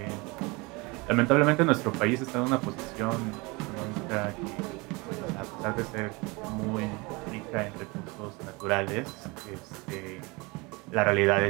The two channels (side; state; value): left; quieter; 26.2 dB